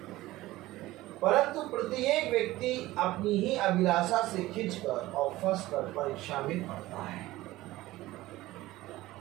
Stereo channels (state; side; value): quieter; left; 17.4 dB